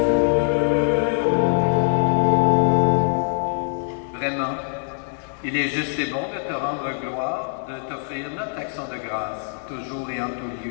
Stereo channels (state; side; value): silent; right; 63 dB below the other